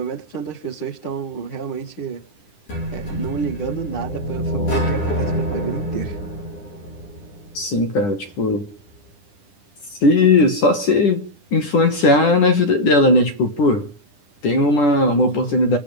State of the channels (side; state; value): right; late; 10 ms